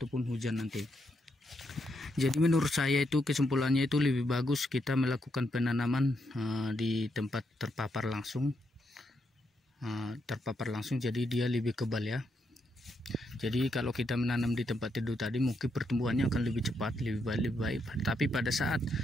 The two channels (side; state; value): both; normal; correlation 0.80